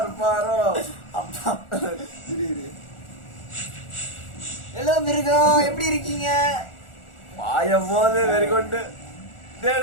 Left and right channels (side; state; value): right; late; 1.4 ms